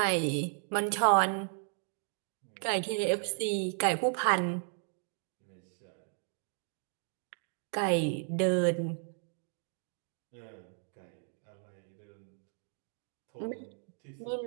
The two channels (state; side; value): silent; left; 55 dB below the other